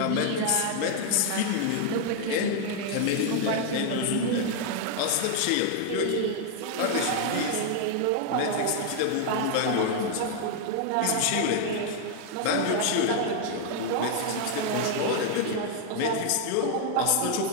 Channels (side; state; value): both; different; correlation 0.00